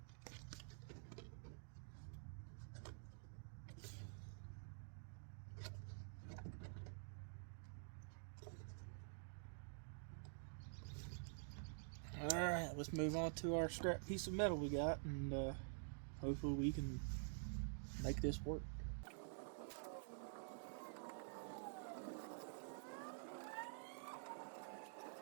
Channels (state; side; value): silent; left; digital silence